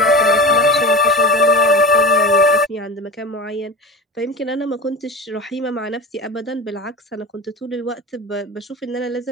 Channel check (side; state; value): both; normal; correlation 0.30